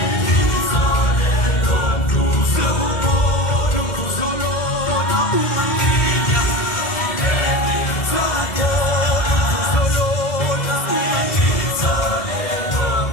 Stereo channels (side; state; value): right; late; 1.7 ms